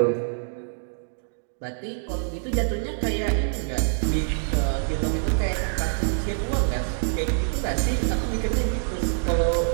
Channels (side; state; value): left; silent; digital silence